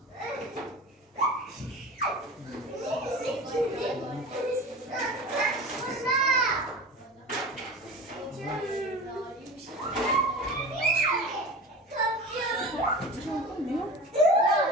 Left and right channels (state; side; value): normal; both; correlation 0.33